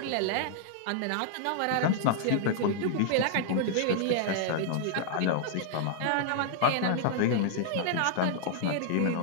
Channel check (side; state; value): both; different; correlation -0.01